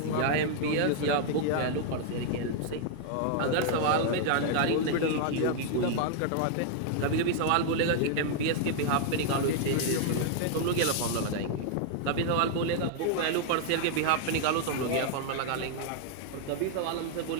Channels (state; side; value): different; both; correlation 0.00